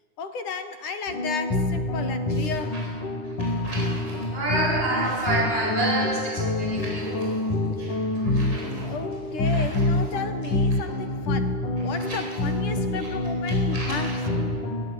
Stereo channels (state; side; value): late; right; 9.8 ms